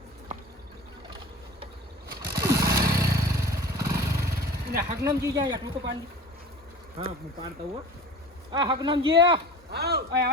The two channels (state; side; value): normal; both; correlation 0.38